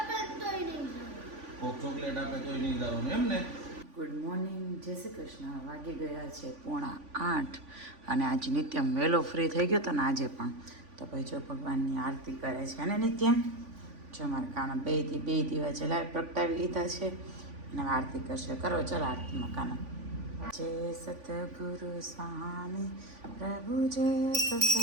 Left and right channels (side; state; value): left; late; 3.5 ms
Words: તોય નહીં કોક ચોકલેટ આપે તોય નહીં જવાનું એમ ને. ગુડ મોર્નિંગ, જય શ્રી કૃષ્ણ. વાગી ગયા છે 7:45 અને આજે નિત્યમ વહેલો ફ્રી થઈ ગયો હતો ને આજે પણ. તો ભાઈ જો ભગવાનની આરતી કરે છે ને નિત્યમ. જો મારા કાના બે દીવા જલાવી પ્રગટાવી લીધા છે અને આરતી કરશે. કરો ચાલો આરતીમાં કાના. જય સતગુરુ સ્વામી પ્રભુ, જય